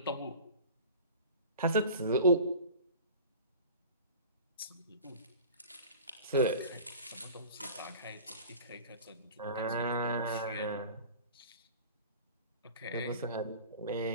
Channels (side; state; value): both; inverted; correlation -0.41